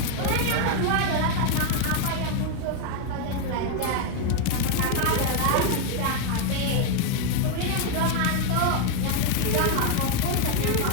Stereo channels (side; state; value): both; different; correlation 0.01